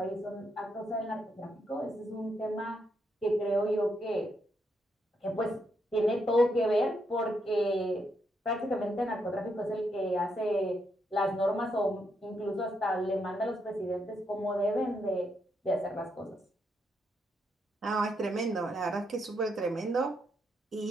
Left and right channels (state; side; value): normal; both; correlation 0.78